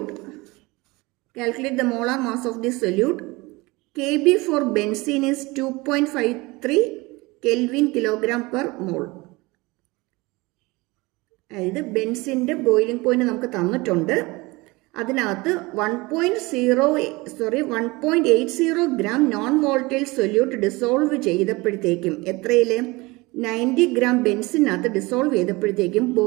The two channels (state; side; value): quieter; left; 23.2 dB